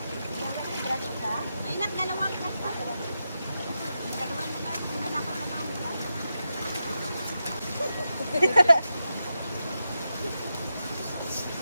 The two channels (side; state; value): both; inverted; correlation -0.89